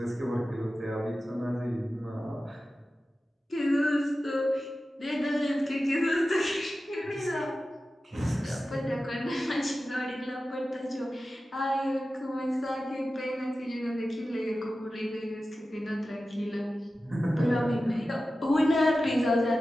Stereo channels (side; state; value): both; normal; correlation 0.94